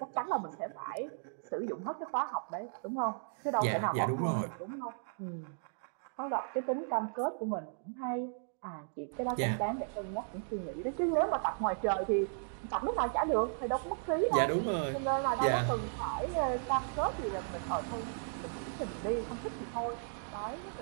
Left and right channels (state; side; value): silent; left; digital silence